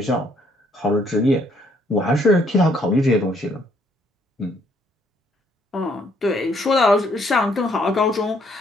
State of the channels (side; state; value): both; normal; correlation 0.68